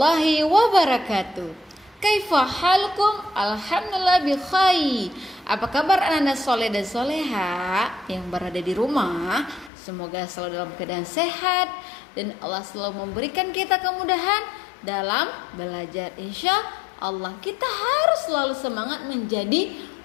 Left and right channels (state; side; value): drops out; right; at 9.7 s